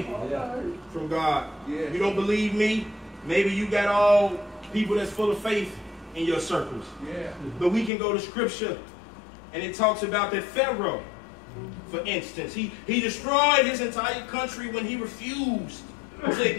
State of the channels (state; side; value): drops out; right; at 7.9 s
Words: from God. You don't believe me? Maybe you got all people that's full of faith in your circles. But we can go to scripture and it talks about that Pharaoh, for instance. He destroyed his entire country when he refused to